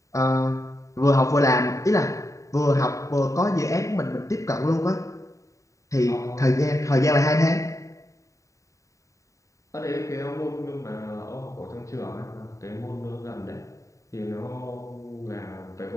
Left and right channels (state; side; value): late; right; 0.16 ms